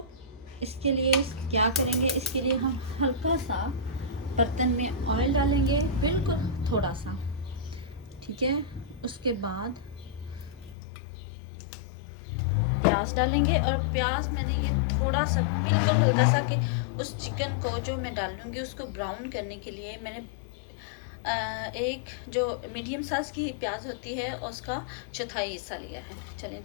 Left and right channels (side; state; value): right; drops out; at 10.8 s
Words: इसके लिए क्या करेंगे, इसके लिए हम हल्का सा बर्तन में ऑयल डालेंगे, बिल्कुल थोड़ा सा, ठीक है। उसके बाद प्याज डालेंगे, और प्याज मैंने ये थोड़ा सा बिल्कुल हल्का सा कि उस चिकन को जो मैं डालूंगी उसको ब्राउन करने के लिए मैंने एक जो मीडियम साइज़ की प्याज होती है उसका चौथाई हिस्सा लिया है। चलें